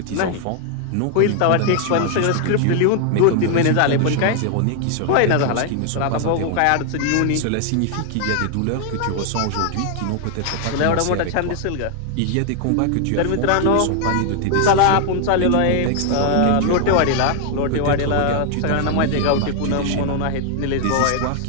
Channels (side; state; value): both; different; correlation 0.00